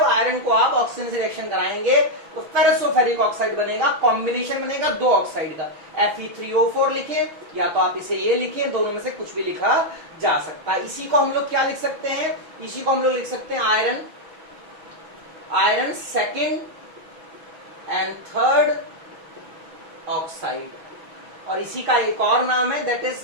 आयरन को आप ऑक्सीजन से रिएक्शन कराएंगे तो फेरसोफेरिक ऑक्साइड बनेगा। कॉम्बिनेशन बनेगा दो ऑक्साइड का। Fe3O4 लिखे या तो आप इसे ये लिखे, दोनों में से कुछ भी लिखा जा सकता है। इसी को हम लोग क्या लिख सकते हैं, इसी को हम लोग लिख सकते हैं iron second and third oxide. और इसी का एक और नाम है, दैट इज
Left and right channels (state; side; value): late; left; 6.2 ms